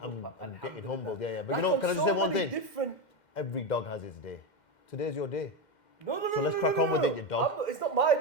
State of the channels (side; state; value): right; late; 2.1 ms